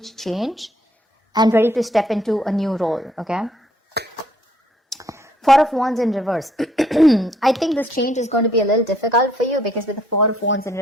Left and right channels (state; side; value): normal; both; correlation 0.66